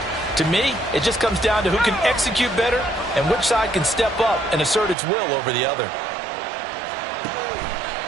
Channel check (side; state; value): left; drops out; at 5.0 s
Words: To me, it just comes down to who can execute better and which side can step up and assert its will over the other.